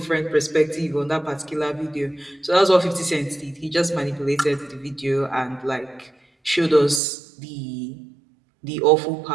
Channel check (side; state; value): left; drops out; at 7.0 s